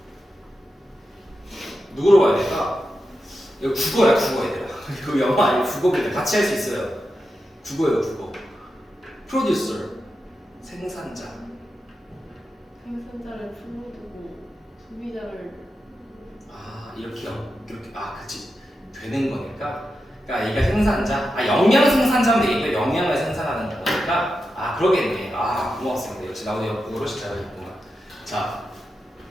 누구로 봐야 될까? 이거 국어야 국어 얘들아 이거 영어 아니고 국어인데 같이 할 수 있어요. 국어예요 국어. 프로듀서 생산자. 생산자를 풀로 두고 소비자를 이렇게 그치 되는 거니까 그러니까 얘가 생산자 영양 생산자면 되겠네. 영양을 생산하는 거니까 그러겠네. 고맙습니다. 역시 나도 영어를 잘하겠구나. 자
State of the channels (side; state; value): both; normal; correlation 0.89